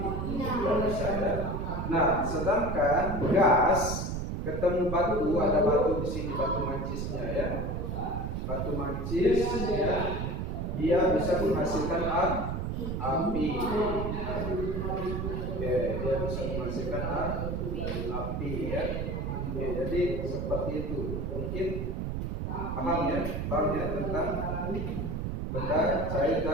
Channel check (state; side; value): noise; right; rumble, 2 dB below the sound